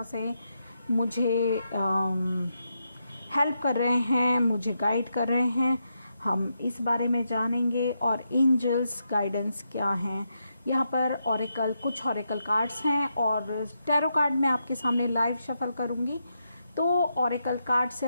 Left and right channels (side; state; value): both; inverted; correlation -0.83